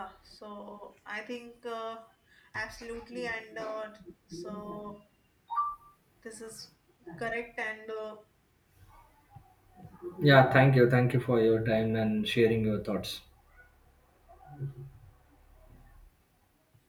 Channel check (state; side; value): identical; both; correlation 1.00